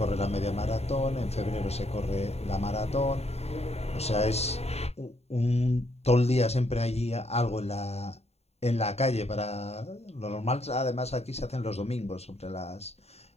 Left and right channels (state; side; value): late; right; 0.30 ms